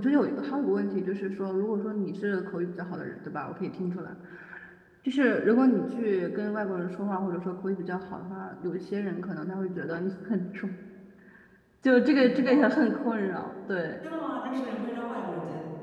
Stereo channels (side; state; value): both; identical; correlation 1.00